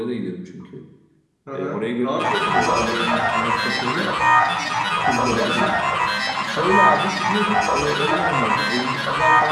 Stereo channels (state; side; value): identical; both; correlation 1.00